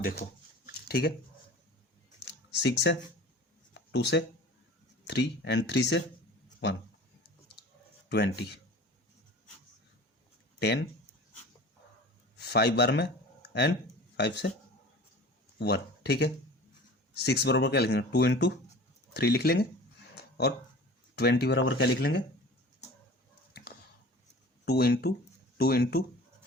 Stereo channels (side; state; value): both; normal; correlation 0.41